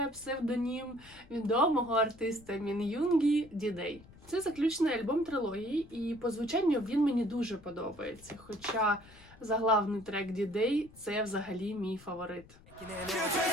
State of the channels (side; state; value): left; noise; rumble, 23 dB below the sound